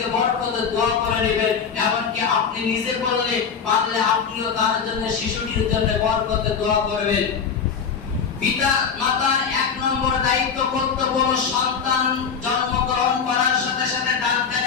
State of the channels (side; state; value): right; quieter; 6.4 dB